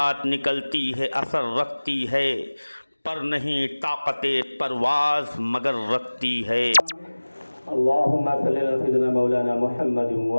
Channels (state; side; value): inverted; both; correlation -1.00